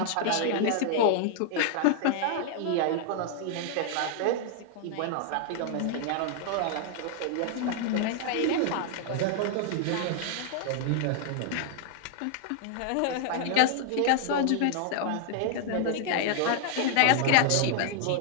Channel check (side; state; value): both; different; correlation 0.00